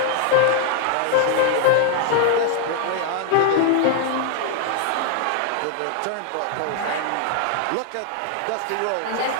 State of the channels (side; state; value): both; different; correlation 0.00